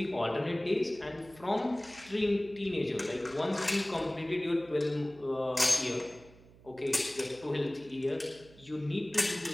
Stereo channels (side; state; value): right; noise; hum, 24 dB below the sound